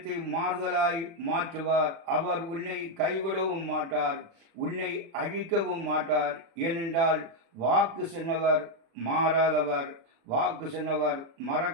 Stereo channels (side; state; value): left; late; 36 ms